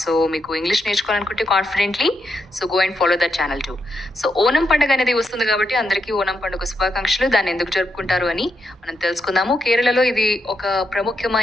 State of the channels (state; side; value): normal; both; correlation 0.82